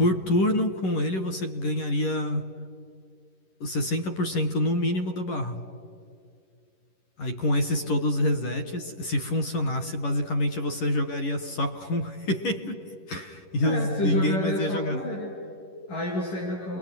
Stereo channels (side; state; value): right; late; 11 ms